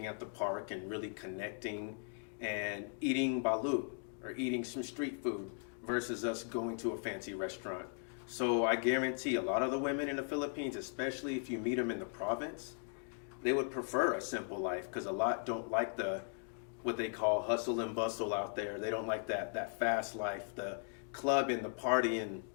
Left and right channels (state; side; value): silent; right; 52 dB below the other